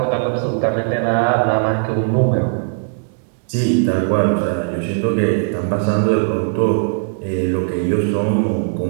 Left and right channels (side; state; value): left; silent; digital silence